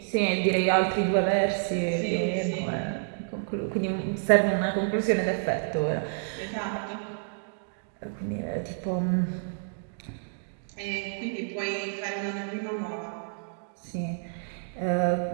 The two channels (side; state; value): left; silent; digital silence